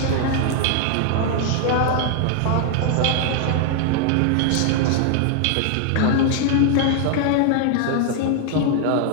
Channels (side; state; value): both; different; correlation 0.00